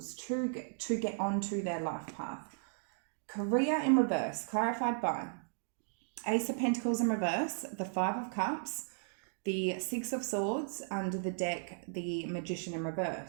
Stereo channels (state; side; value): silent; left; digital silence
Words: to get onto their life path. Career in reverse, clarified by Ace of Pentacles in reverse, the Five of Cups, the Six of Swords, under the deck, the Magician in